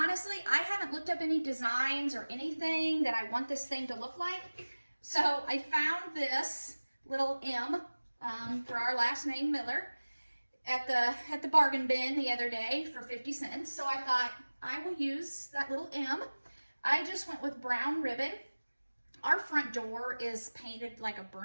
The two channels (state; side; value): inverted; both; correlation -1.00